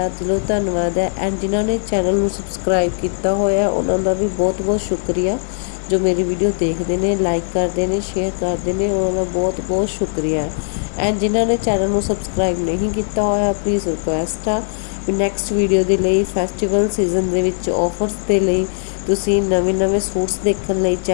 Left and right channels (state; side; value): silent; right; digital silence